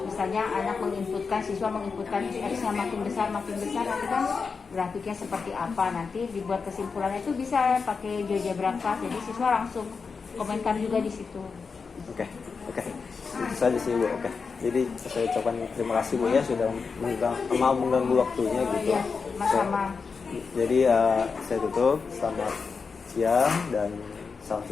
misalnya anak menginputkan, siswa menginputkan x-nya makin besar nanti kan grafiknya seperti apa, nanti dibuat kesimpulannya itu bisa pakai GeoGebra kelas. Jadi siswa langsung komentar juga di situ. Oke. Itu saja sih Bu. Oke. Jadi saya ucapkan terima kasih Bu ya sudah mau mengganggu waktunya gitu. Iya, sama-sama. Jadi saya tutup. Selamat siang dan salam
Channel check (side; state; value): right; quieter; 5.1 dB